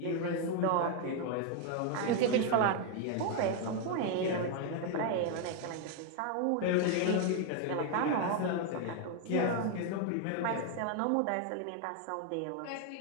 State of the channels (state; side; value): different; both; correlation 0.00